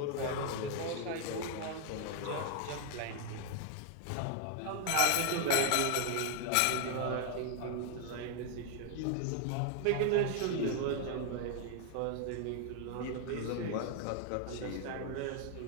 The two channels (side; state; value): both; different; correlation 0.00